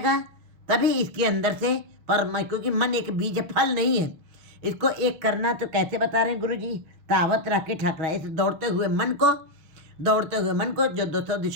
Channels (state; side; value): late; left; 6.1 ms